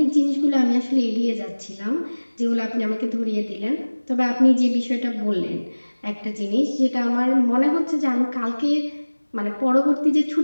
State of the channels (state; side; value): inverted; both; correlation -1.00